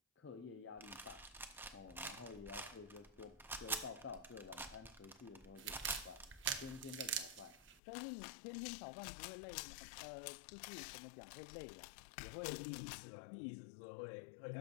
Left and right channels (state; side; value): drops out; right; at 7.8 s